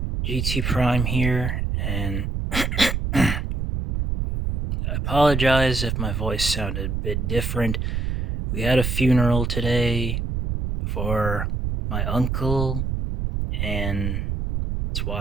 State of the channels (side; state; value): right; noise; rumble, 1 dB below the sound